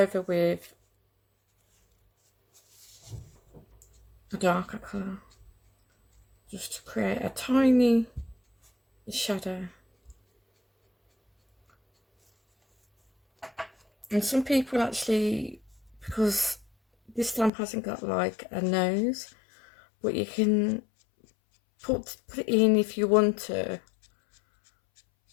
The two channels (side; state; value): right; drops out; at 17.5 s